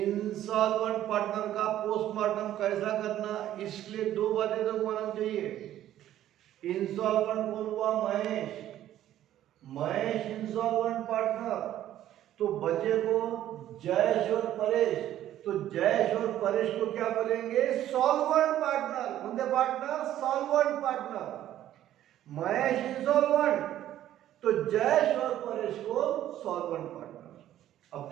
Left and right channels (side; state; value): left; quieter; 12.4 dB